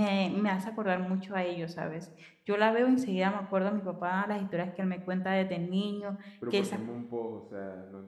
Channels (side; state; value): both; identical; correlation 1.00